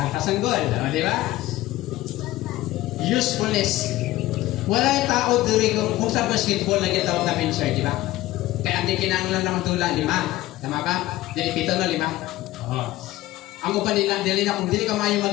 ang goal. Di ba? Usefulness. Wala'y tao dito kung sa basketball na gitawag na pincher, di ba? Kaya hindi kinanglan naman tula, 5. Tama ba? Dili 7 no, 5. Oo. Ang upan nila, dili na kung dili ka mayo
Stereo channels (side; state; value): right; quieter; 16.6 dB